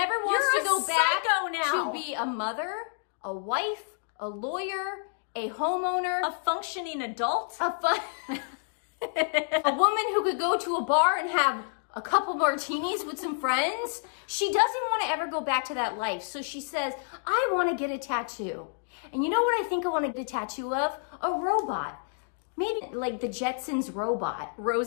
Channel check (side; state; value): right; silent; digital silence